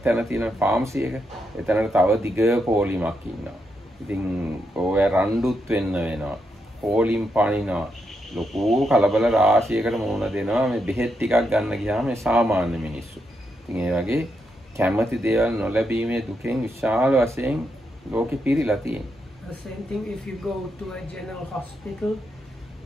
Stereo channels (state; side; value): normal; both; correlation 0.82